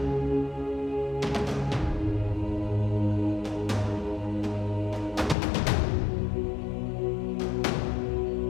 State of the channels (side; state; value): right; drops out; at 5.4 s